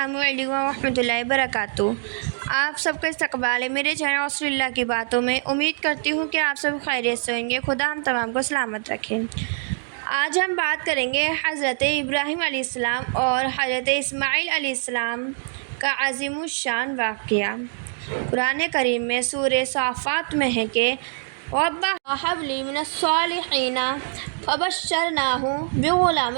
علیکم ورحمۃ اللہ وبرکاتہ۔ آپ سب کا استقبال ہے میرے چینل رسول اللہ کی باتوں میں۔ امید کرتی ہوں کہ آپ سب خیریت سے ہوں گے۔ خدا ہم تمام کو سلامت رکھے۔ آج ہم بات کریں گے حضرت ابراہیم علیہ السلام اور حضرت اسماعیل علیہ السلام کا عظیم الشان واقعہ۔ قرآن کریم میں سورہ صافات میں ہے کہ رَبَّ هَبْ لِي مِنَ الصَّالِحِينَ فَبَشَّرْنَاهُ بِغُلَامٍ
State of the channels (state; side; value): silent; left; 63 dB below the other